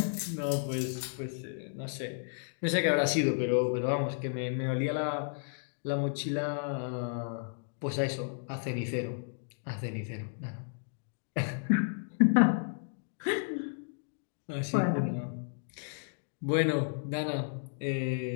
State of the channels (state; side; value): silent; right; digital silence